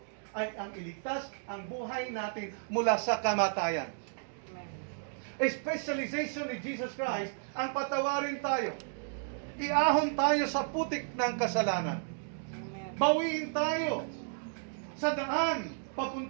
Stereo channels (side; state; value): left; silent; digital silence